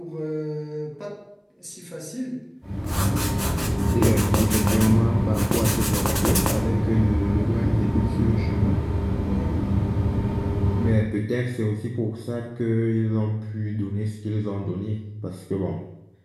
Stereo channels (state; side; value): identical; both; correlation 1.00